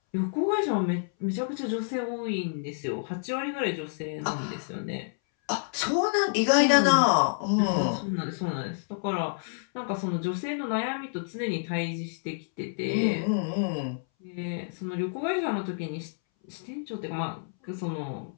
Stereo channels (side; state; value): right; silent; 59 dB below the other